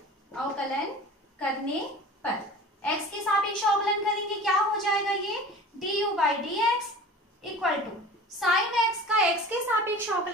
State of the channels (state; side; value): normal; both; correlation 0.39